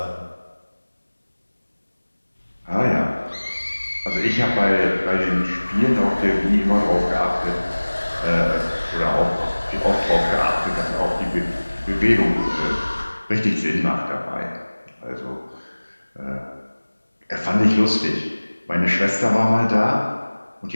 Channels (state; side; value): inverted; both; correlation -1.00